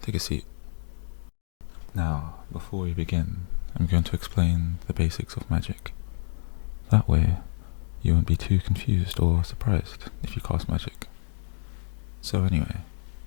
a seat. Now, before we begin, I'm going to explain the basics of magic. That way, you won't be too confused or surprised if you cast magic. So anyway,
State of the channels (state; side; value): silent; right; 59 dB below the other